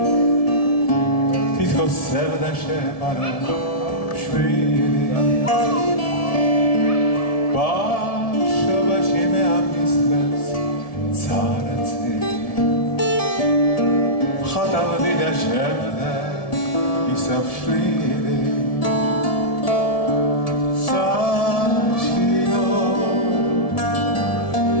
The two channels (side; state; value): right; late; 1.7 ms